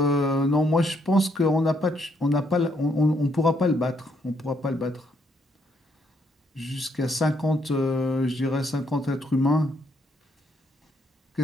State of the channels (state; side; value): normal; both; correlation 0.73